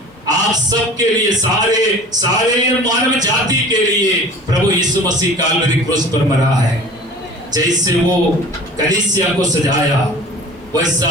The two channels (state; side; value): normal; both; correlation 0.42